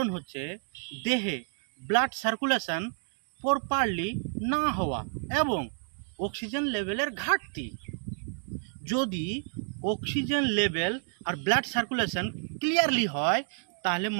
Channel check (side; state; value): left; silent; digital silence